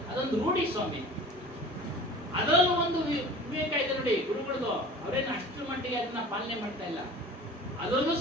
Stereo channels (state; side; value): normal; both; correlation 0.41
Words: ಅದೊಂದು ರೂಢಿ ಸ್ವಾಮಿ. ಅದರಲ್ಲೂ ಒಂದು ವಿವೇಕ ಇದೆ ನೋಡಿ ಗುರುಗಳದು. ಅವರೇನು ಅಷ್ಟು ಮಟ್ಟಿಗೆ ಅದನ್ನ ಪಾಲನೆ ಮಾಡ್ತಾ ಇಲ್ಲ. ಅದರಲ್ಲೂ